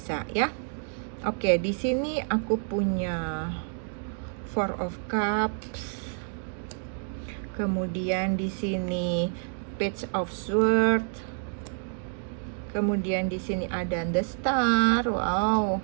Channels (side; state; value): left; silent; 59 dB below the other